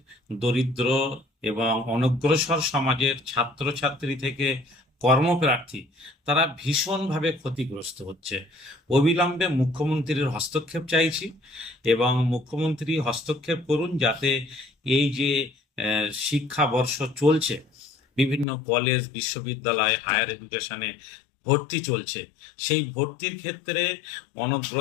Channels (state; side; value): drops out; right; at 18.4 s